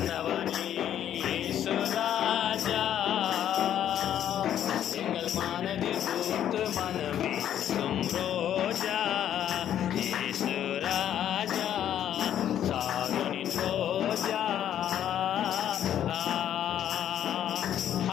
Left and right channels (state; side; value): quieter; right; 10.5 dB